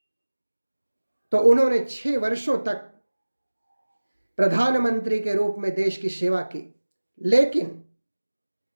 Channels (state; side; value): inverted; both; correlation -1.00